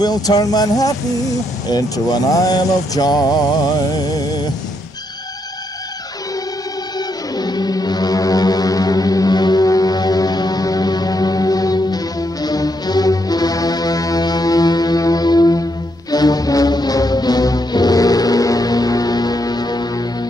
turn Manhattan into an isle of joy.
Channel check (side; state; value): both; normal; correlation 0.78